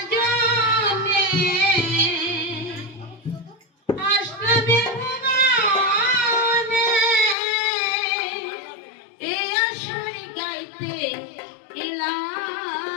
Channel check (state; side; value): drops out; right; at 7.4 s